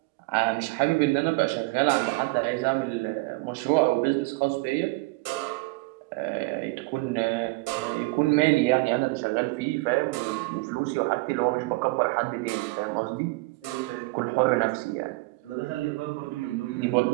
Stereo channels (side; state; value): left; quieter; 24.2 dB